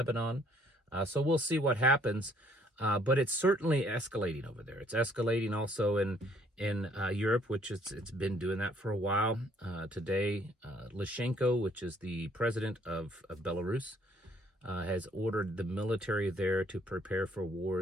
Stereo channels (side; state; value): both; normal; correlation 0.64